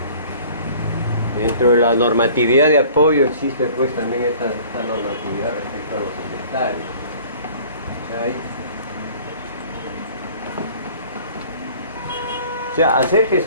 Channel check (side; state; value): both; inverted; correlation -0.49